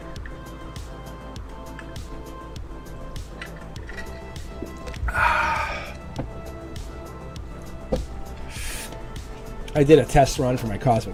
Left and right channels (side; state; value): both; identical; correlation 1.00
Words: I did a test run for my